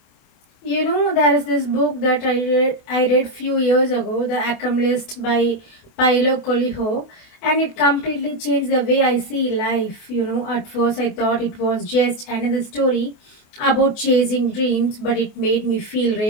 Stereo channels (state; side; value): late; right; 28 ms